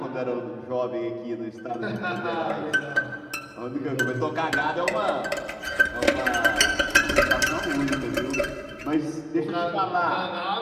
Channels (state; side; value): identical; both; correlation 1.00